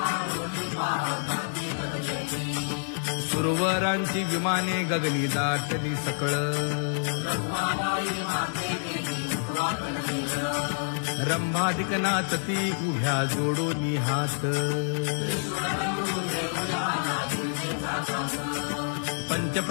सुरवरांची विमाने गगनी दाटली सकळ रंभाधिक नाचती उभ्या जोडोनी हात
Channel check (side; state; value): right; silent; digital silence